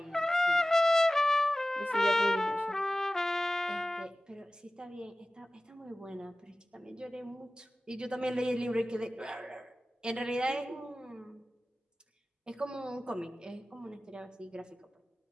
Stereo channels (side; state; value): both; normal; correlation 0.96